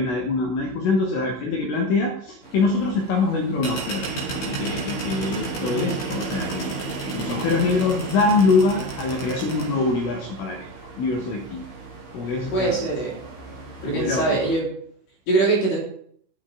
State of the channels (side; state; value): right; late; 15 ms